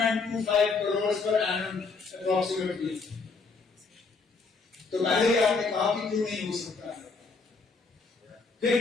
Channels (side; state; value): right; quieter; 4.4 dB